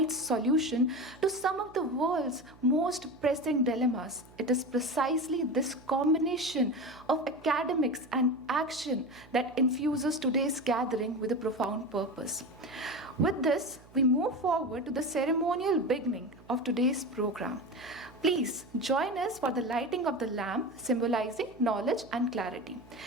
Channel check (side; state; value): right; noise; hum, 24 dB below the sound